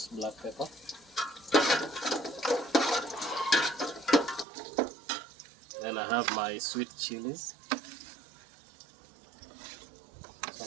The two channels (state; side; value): drops out; left; at 4.5 s